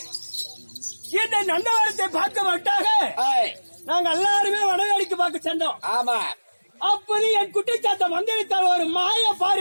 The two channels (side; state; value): both; inverted; correlation -1.00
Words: இந்த நந்தவரத்தை பார்க்க மாட்டாக நாங்க எல்லாருமே வடவேடிக்கு பார்க்க சென்றோம். ஆமா. அப்போது என் குட்டிச்சாத்த மந்திரித்தால் ஒரு மாய